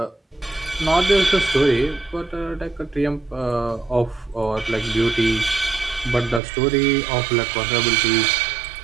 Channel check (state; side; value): drops out; left; at 6.4 s